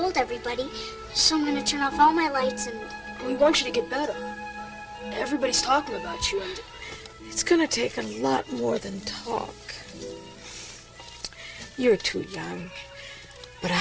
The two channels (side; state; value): both; identical; correlation 1.00